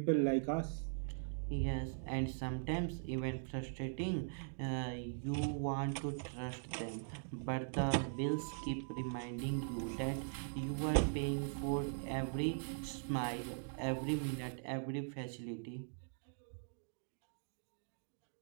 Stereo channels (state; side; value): silent; left; digital silence